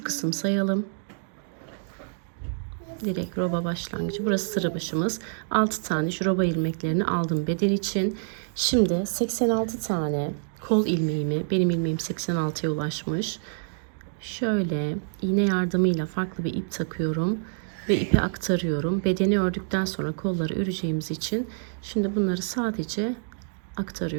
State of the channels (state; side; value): silent; left; digital silence